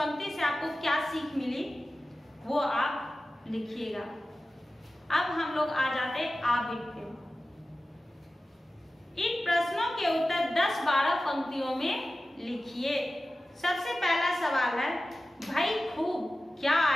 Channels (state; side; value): normal; both; correlation 0.95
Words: से आपको क्या सीख मिली वो आप लिखिएगा। अब हम लोग आ जाते हैं आबिद पे। इन प्रश्नों के उत्तर 10-12 पंक्तियों में लिखिए। सबसे पहला सवाल है भाई खूब क्या